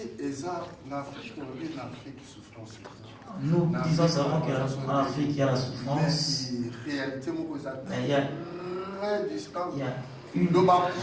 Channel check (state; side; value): identical; both; correlation 1.00